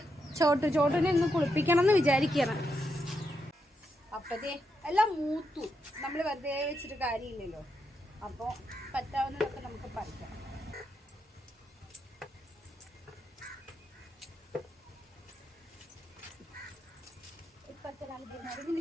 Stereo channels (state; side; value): normal; both; correlation 0.83